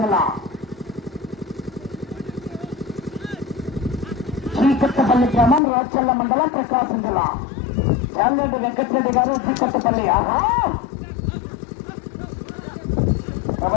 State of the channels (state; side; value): drops out; right; at 5.6 s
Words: జిల్లా. శ్రీకొత్తపల్లి గ్రామం రాచల్ల మండలం ప్రకాశం జిల్లా. చాలరెడ్డి వెంకటరెడ్డి గారు శ్రీకొత్తపల్లి.